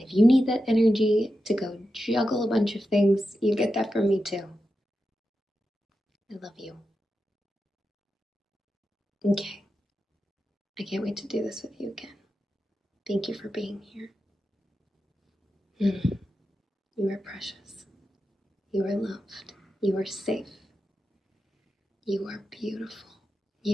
if you need that energy to go juggle a bunch of things, you get that from me too. I love you. Okay. I can't wait to do this with you again. Thank you for being here. You are precious. You are loved. You are safe. You are beautiful.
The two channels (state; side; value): normal; both; correlation 0.90